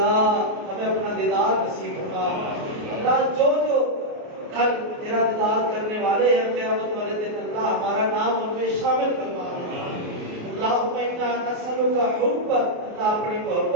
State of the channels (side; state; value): left; late; 28 ms